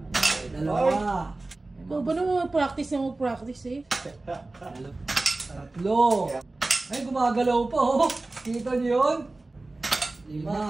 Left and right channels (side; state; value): left; quieter; 3.1 dB